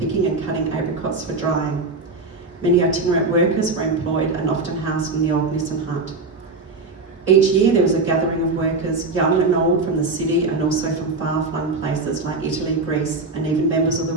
and cutting apricots for drying. Many itinerant workers were employed and often housed in the old Nissen hut. Each year there was a gathering of workers, young and old, from the city and also from far-flung places like Italy, Greece, and even members of the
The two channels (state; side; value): quieter; left; 3.6 dB